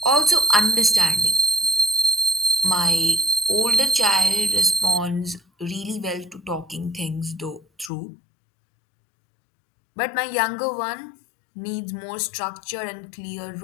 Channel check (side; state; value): right; drops out; at 7.9 s